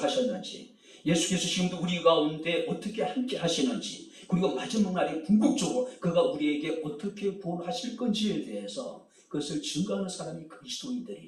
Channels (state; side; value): identical; both; correlation 1.00